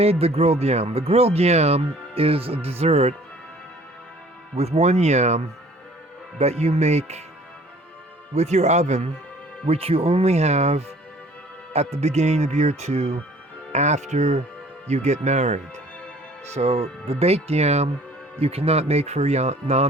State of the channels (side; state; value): both; normal; correlation 0.52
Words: the grilled yam. The grilled yam is a dessert with one yam that you make with your oven, which you only have at the beginning of year two after you get married. So the baked yam you cannot make for